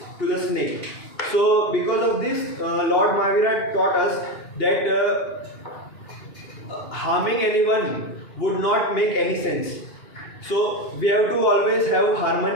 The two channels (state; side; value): late; right; 2.8 ms